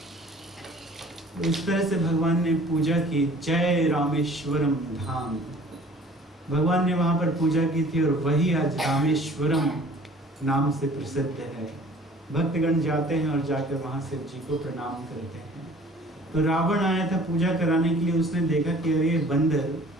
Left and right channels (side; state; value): both; normal; correlation 0.50